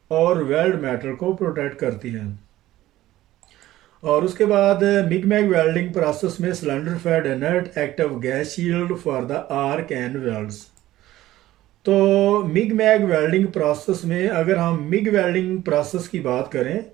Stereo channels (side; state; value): left; quieter; 15.2 dB